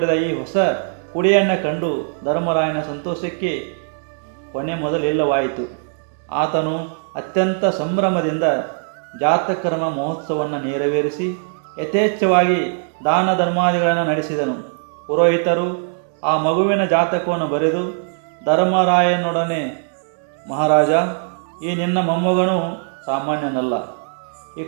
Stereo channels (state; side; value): silent; left; digital silence